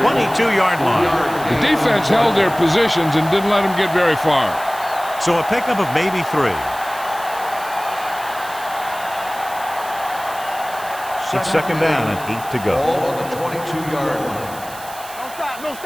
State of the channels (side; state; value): right; noise; hiss, 16 dB below the sound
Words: 22-yard line. The defense held their positions and didn't let them get very far. So a pickup of maybe 3. It's 2nd down and 8 to go. Ball on the 22-yard line. Don't